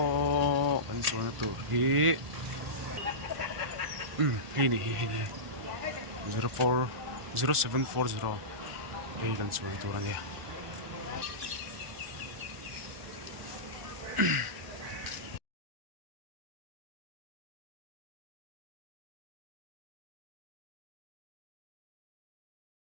o kan chuan to hi hi 0740 hei kan chuan to ania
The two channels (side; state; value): left; late; 1.4 ms